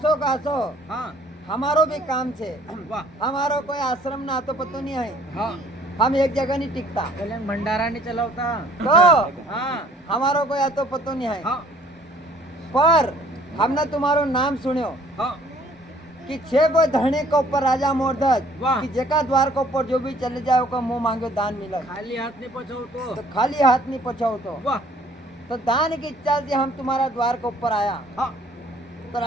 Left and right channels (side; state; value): both; normal; correlation 0.57